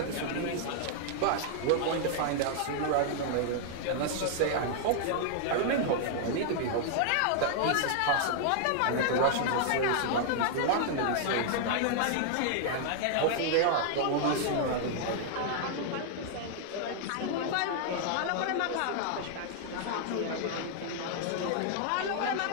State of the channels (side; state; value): both; different; correlation -0.01